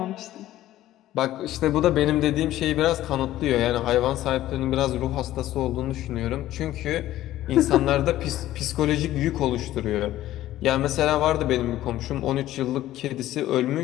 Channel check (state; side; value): quieter; right; 14.3 dB